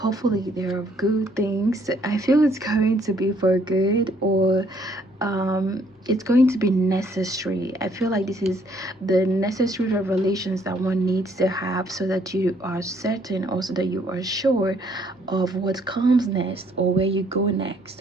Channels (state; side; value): normal; both; correlation 0.65